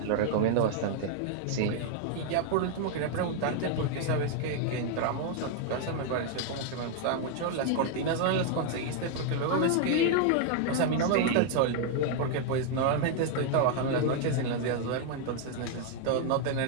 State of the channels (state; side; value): different; both; correlation 0.00